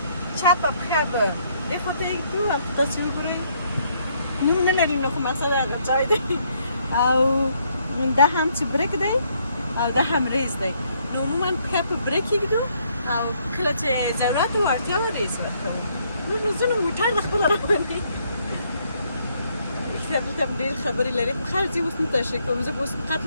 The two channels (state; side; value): inverted; both; correlation -0.70